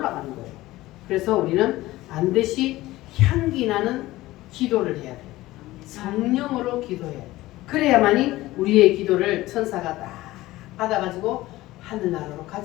거예요. 그래서 우리는 반드시 향기 나는 기도를 해야 돼요. 성령으로 기도해야 돼요. 그래야만이 우리의 기도를 천사가 딱 받아가지고 하늘나라로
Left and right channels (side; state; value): right; quieter; 17.5 dB